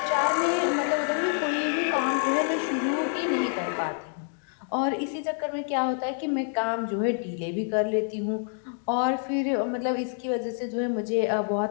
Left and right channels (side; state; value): right; silent; 60 dB below the other